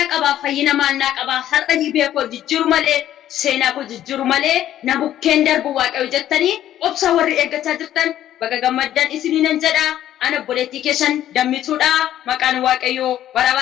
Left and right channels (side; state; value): right; quieter; 12.0 dB